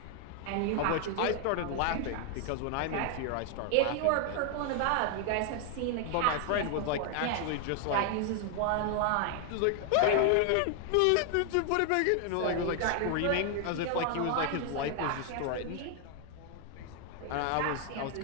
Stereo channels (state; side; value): different; both; correlation 0.00